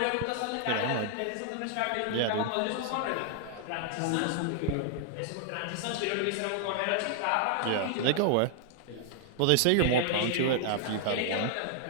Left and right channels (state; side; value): different; both; correlation 0.00